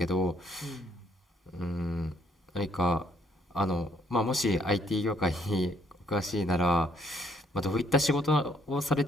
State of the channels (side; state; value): both; normal; correlation 0.67